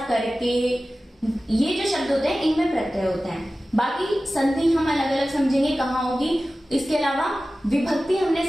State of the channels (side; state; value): both; normal; correlation 0.96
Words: करके, ये जो शब्द होते हैं इनमें प्रत्यय होते हैं। बाकी संधि हम अलग अलग समझेंगे कहाँ होगी। इसके अलावा विभक्ति हमने